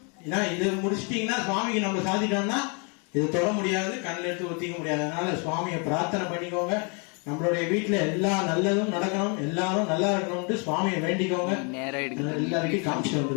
ஏன்னா இது முடிச்சிட்டீங்கன்னா சுவாமிக்கு நம்ம சாதிட்டோம்னா இது தொட முடியாது, கண்ணில் எடுத்து ஒத்திக்க முடியாது. அதனால சுவாமியை பிரார்த்தனை பண்ணிக்கோங்க. நம்மளுடைய வீட்டுல எல்லா நல்லதும் நடக்கணும், எல்லாரும் நல்லா இருக்கணும்னு சுவாமியை வேண்டிக்கோங்க. எல்லாருக்கும் காமிச்சு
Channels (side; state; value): right; quieter; 35.3 dB